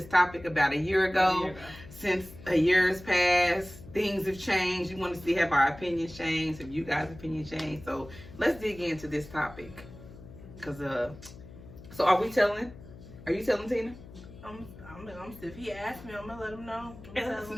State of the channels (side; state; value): left; noise; hum, 17 dB below the sound